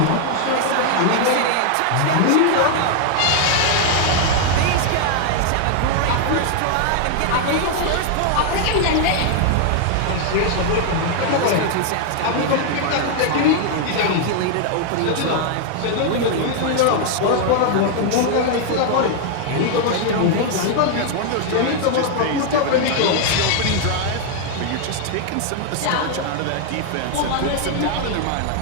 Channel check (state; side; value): different; both; correlation 0.00